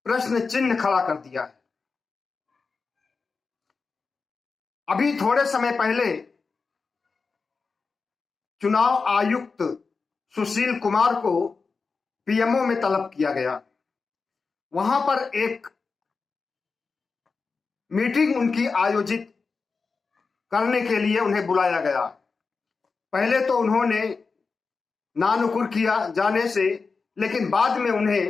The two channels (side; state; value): right; quieter; 4.6 dB